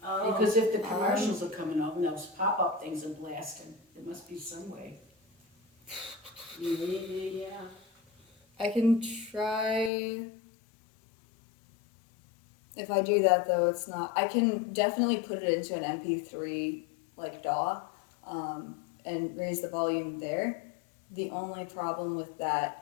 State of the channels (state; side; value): drops out; right; at 9.9 s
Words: Oh. Because if the commercials are coming up and those pop-up things are blasting, there must be some way. Yeah. I can try. If I do that though, it's not. I can definitely put it into an MP3 like DAW, and raise the volume there. The only problem with that